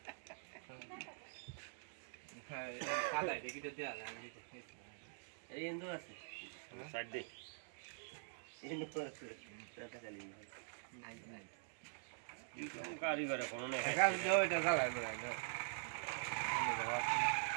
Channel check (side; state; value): left; silent; digital silence